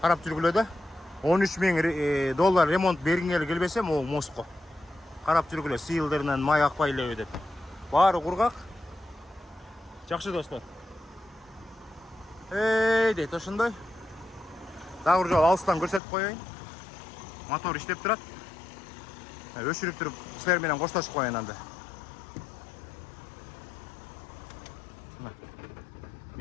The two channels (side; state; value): right; drops out; at 16.0 s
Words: жүргүлө да. $13,000 ремонт бергиңер келбесе, могу мостко карап жүргүлө, сыйылдырынан май акпай элеби деп. Баары кургак. Жакшы достор. Дейт ошондой. Дагы бир жолу алыстан көрсөтүп коеюн. Мотор иштеп турат. Өчүрүп туруп силер менен коштошуп коеюн анда.